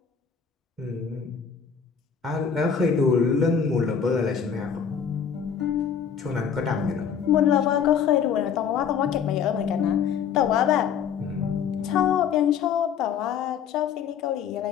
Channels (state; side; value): quieter; right; 7.2 dB